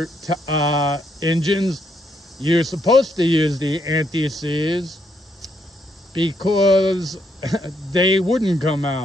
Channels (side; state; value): both; normal; correlation 0.75